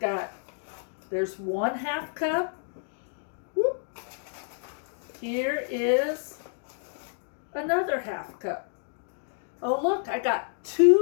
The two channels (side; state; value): right; silent; digital silence